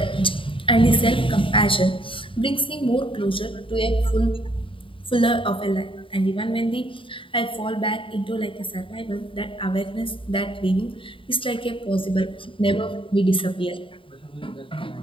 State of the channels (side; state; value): right; late; 0.25 ms